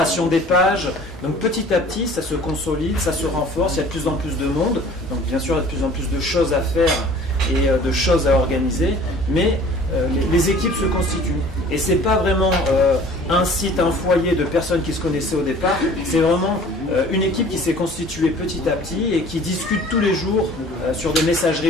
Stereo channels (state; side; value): normal; both; correlation 0.48